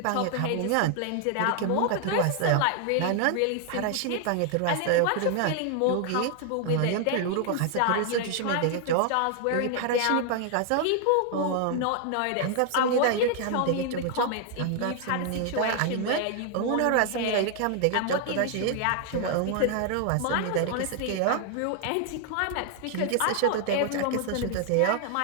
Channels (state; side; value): different; both; correlation 0.00